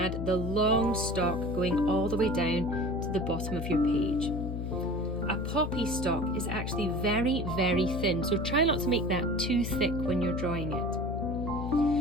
the long stalk going all the way down to the bottom of your page. A poppy stalk is actually very, very thin, so try not to make that too thick when you're drawing it.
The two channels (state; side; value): noise; left; hum, 4 dB below the sound